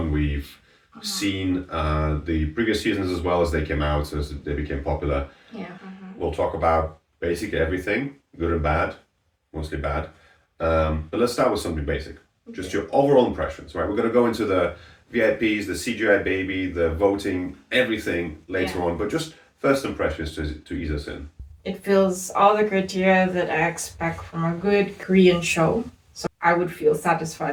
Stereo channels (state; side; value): identical; both; correlation 1.00